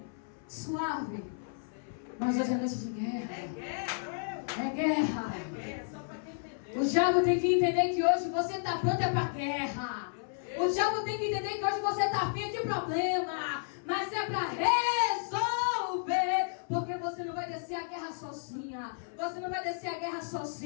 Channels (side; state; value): right; silent; 56 dB below the other